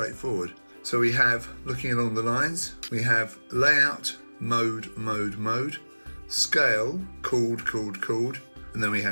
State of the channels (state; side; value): inverted; both; correlation -1.00